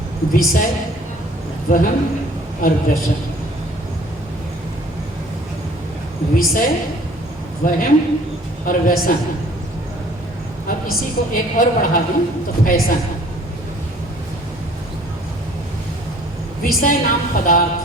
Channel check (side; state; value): both; normal; correlation 0.54